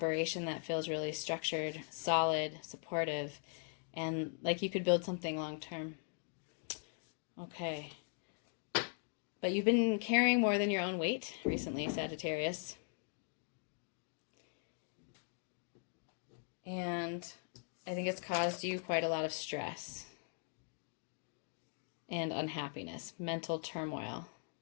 that feels really structured, solid, supportive, and like you could build something long term. Okay. But you've been carrying more than your own weight recently, Sagittarius. And I think it's caused you quite a lot of stress and unhappiness, mental turmoil.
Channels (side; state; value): right; silent; 51 dB below the other